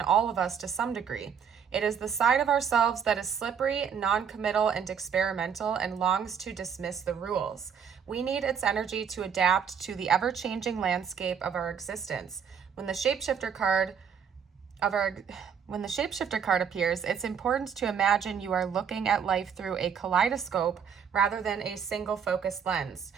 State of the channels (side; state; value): left; quieter; 7.3 dB